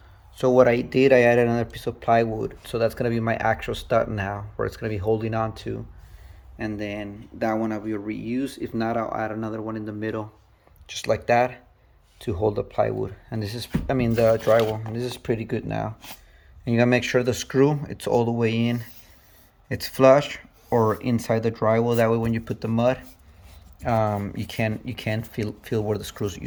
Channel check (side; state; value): both; identical; correlation 1.00